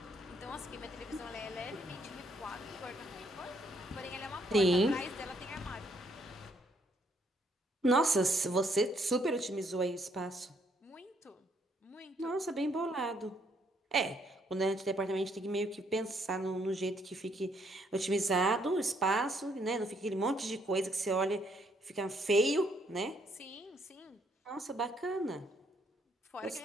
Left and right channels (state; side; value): normal; both; correlation 0.70